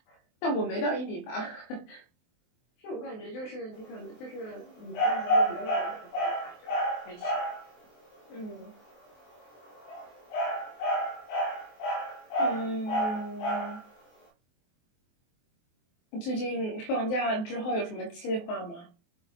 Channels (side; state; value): right; late; 23 ms